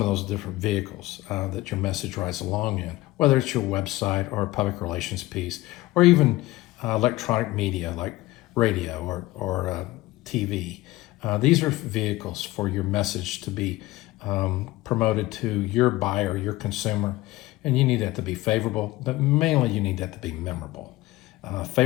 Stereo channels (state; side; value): quieter; right; 18.2 dB